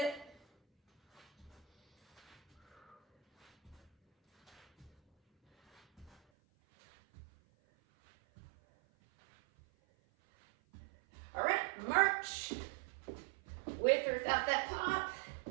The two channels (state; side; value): drops out; left; at 6.2 s